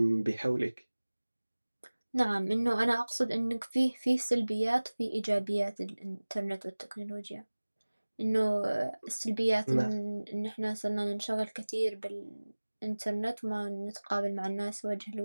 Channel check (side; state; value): both; inverted; correlation -1.00